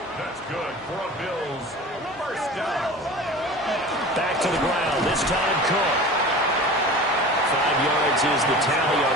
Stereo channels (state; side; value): noise; right; hum, 26 dB below the sound